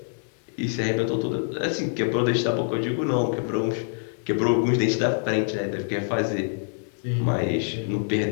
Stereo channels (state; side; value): silent; right; 61 dB below the other